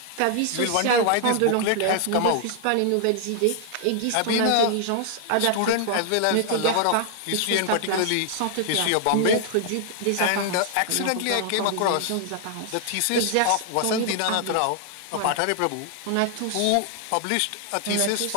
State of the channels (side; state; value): both; different; correlation 0.00